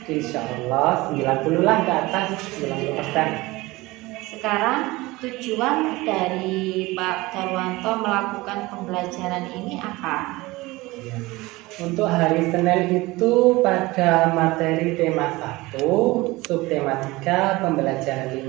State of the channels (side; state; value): left; quieter; 20.8 dB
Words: Insya Allah 90 lah ke atas, 90%. Sekarang tujuan dari Pak Darwanto melakukan pembelajaran ini apa? Untuk hari Senin itu pada materi tema 1, subtema 3, pembelajaran